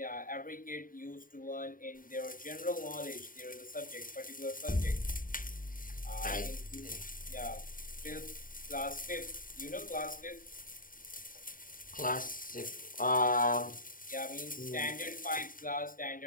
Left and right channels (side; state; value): right; late; 0.40 ms